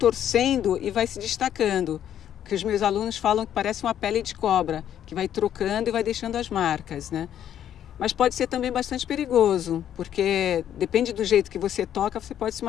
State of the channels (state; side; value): quieter; right; 10.3 dB